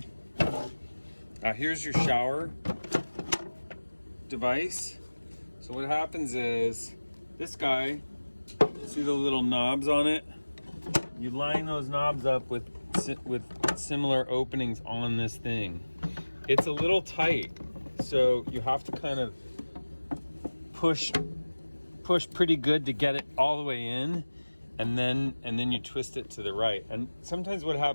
Here's your shower device. So what happens is, this guy, see the little knobs on it? You line those knobs up with similar openings on this thing. It's a little tight, so you have to kind of push pretty good to get it all the way in, and then you twist it to the right. And sometimes what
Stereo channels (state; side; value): inverted; both; correlation -1.00